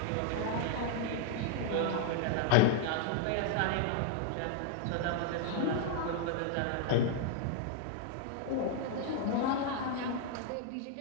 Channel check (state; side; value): different; both; correlation 0.00